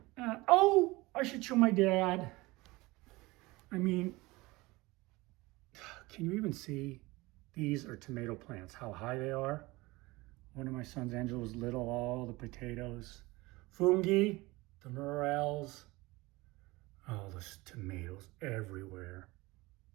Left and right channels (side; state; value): left; quieter; 21.7 dB